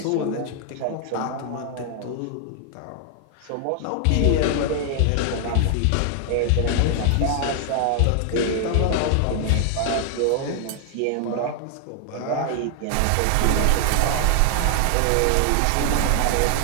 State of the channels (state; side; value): different; both; correlation 0.00